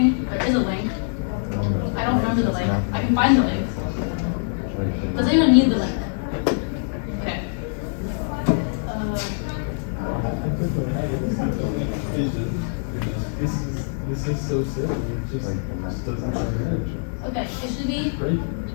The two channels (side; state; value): right; silent; digital silence